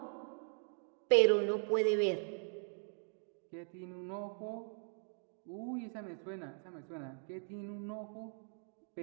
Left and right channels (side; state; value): left; silent; 51 dB below the other